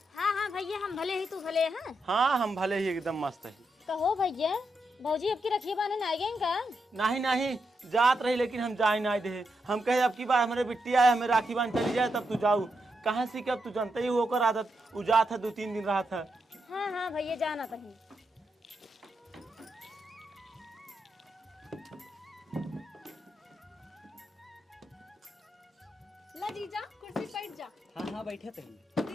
हाँ हाँ भैया हम भले ही तू भले हैं। हाँ हम भले ही एकदम मस्त है। कहो भैया भौजी अब की रखी बाने ना गए का? नहीं जात रही लेकिन हम जाए ना दे। हम कहे अब की बार हमारे बिट्टी आए हमें राखी बांध चली जाए तब तू जाऊ। कहाँ से कि अब तू जानते ही होकर आदत उजात है 2-3 दिन रहा था। हाँ हाँ भैया जाना कहीं। ला जीजा कुर्सी बैठ जा। हाँ हाँ बैठे थे।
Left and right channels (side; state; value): both; normal; correlation 0.84